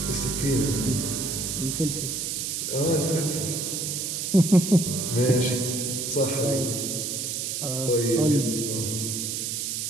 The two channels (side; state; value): right; noise; hiss, 2 dB below the sound